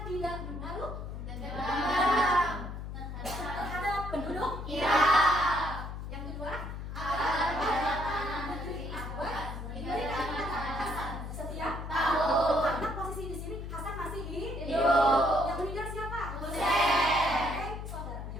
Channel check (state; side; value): noise; left; hum, 7 dB below the sound